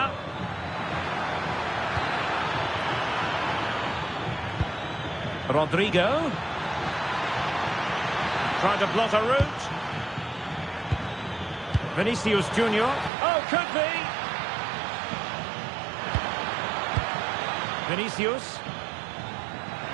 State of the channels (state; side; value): drops out; left; at 13.1 s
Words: Rodrigo. Trying to plot a route. Vinicius Junior. Oh, could be. Vinicius.